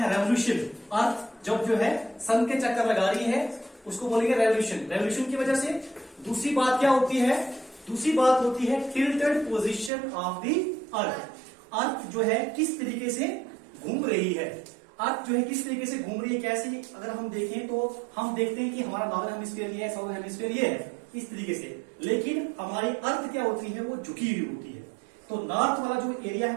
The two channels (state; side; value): drops out; left; at 9.9 s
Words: रेवोल्यूशन, अर्थ जब जो है सन के चक्कर लगा रही है उसको बोलेंगे रेवोल्यूशन। रेवोल्यूशन की वजह से दूसरी बात क्या होती है, दूसरी बात होती है tilted position of the earth. Earth जो है किस तरीके से घूम रही है, अर्थ जो है किस तरीके से घूम रही है, कैसे अगर हम देखें तो हम देखते हैं कि हमारा नॉर्दर्न हेमिस्फीयर ये है, साउथर्न हेमिस्फीयर ये है, इस तरीके से। लेकिन हमारी अर्थ क्या होती है, वो झुकी हुई होती है। तो नॉर्थ वाला जो एरिया